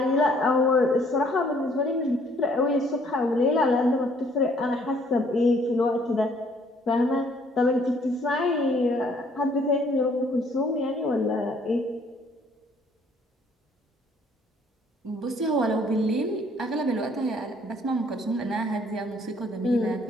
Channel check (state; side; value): normal; both; correlation 0.62